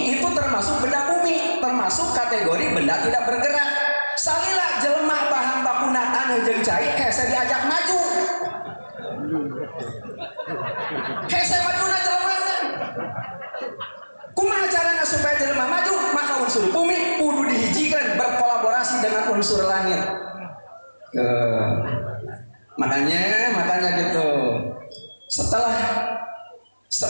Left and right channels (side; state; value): both; inverted; correlation -1.00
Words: itu termasuk benda bumi, termasuk kategori benda tidak bergerak. Salila jelema bahan bakuna tanah jeung cai hese diajak maju. Hese majuna jelema. Kumaha carana supaya jelema maju? Maka unsur bumi kudu dihijikan berkolaborasi dengan unsur langit. Makanya gitu. Setelah